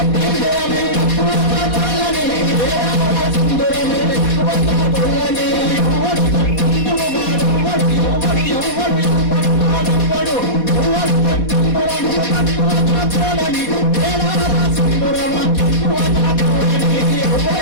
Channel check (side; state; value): right; late; 4.2 ms